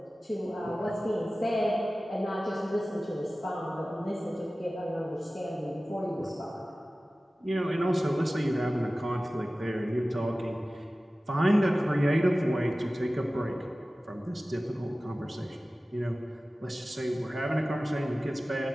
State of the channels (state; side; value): normal; both; correlation 0.96